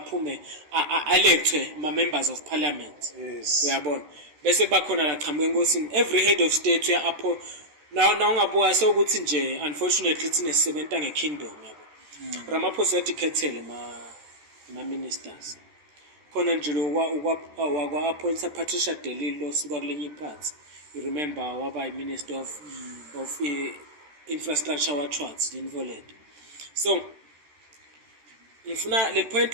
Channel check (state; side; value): late; left; 13 ms